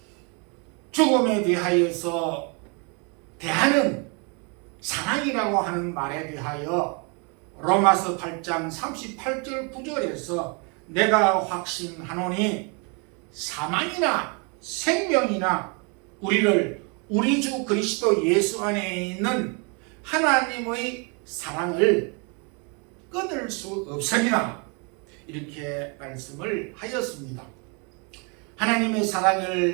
죽음에 대하여서 대하는 사랑이라고 하는 말에 대하여 로마서 8장 38절 9절에서 내가 확신하노니 사망이나 생명이나 우리를 우리 주 그리스도 예수 안에 있는 하나님의 사랑을 끊을 수 없으리라 이렇게 말씀을 하였습니다. 하나님의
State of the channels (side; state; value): left; quieter; 34.1 dB